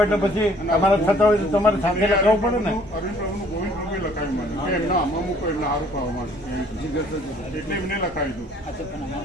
એટલે પછી તમારે થતા હોય તો તમારે સાથે લખાવવું પડે ને અરવિંદ પ્રભુનું ગોવિંદ પ્રભુએ લખાયું મને કે એમના આમાં મૂકો એમને સારું ખાવા માટે એટલે એમને લખાવી દઉં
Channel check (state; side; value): normal; both; correlation 0.58